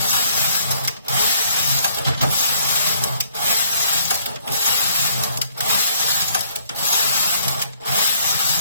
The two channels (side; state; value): both; inverted; correlation -0.61